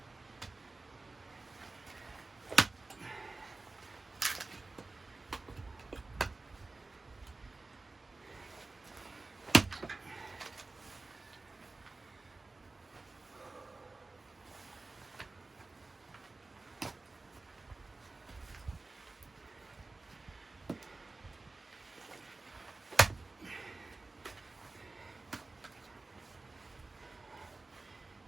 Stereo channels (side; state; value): left; quieter; 3.4 dB